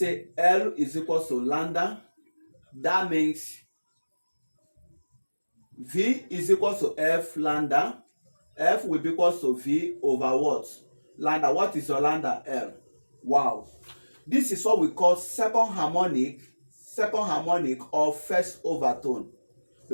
L is equal to lambda. That means V is equal to F lambda. F will be equal to V over what? Lambda. What is your lambda? L. Wow. This is what we call second harmonic of first overtone,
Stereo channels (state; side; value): inverted; both; correlation -1.00